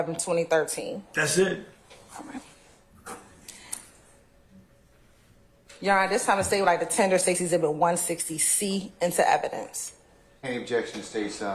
2013? That's it. All right. Your Honor, this time the state would like to tender State's Exhibit 160C into evidence. Any objection to State's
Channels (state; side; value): identical; both; correlation 1.00